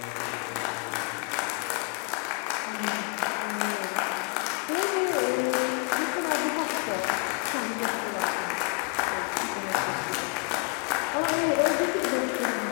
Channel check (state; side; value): quieter; right; 35.6 dB